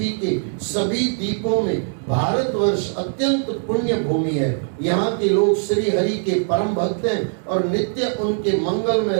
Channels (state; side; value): silent; left; 65 dB below the other